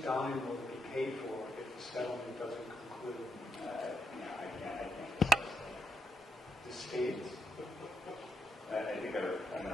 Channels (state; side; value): normal; both; correlation 0.82